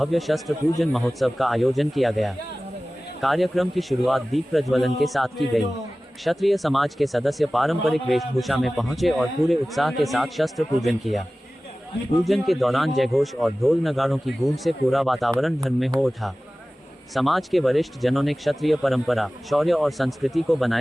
शस्त्र पूजन महोत्सव का आयोजन किया गया। कार्यक्रम की शुरुआत दीप प्रज्वलन के साथ की गई। क्षत्रिय समाज के सदस्य पारंपरिक वेशभूषा में पहुंचे और पूरे उत्साह के साथ शस्त्र पूजन किया। पूजन के दौरान जयघोष और ढोल नगाड़ों की गूंज से पूरा वातावरण धर्ममय हो उठा। समाज के वरिष्ठ जनों ने क्षत्रिय परंपरा, शौर्य और संस्कृति को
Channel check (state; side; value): normal; both; correlation 0.97